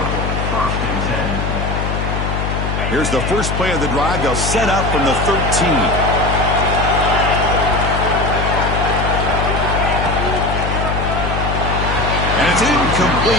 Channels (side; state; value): left; noise; hum, 2 dB below the sound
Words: Here's the first play of the drive. They'll set up from the 13. And it's